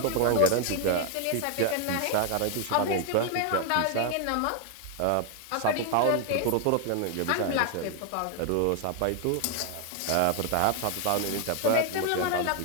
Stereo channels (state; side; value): different; both; correlation 0.01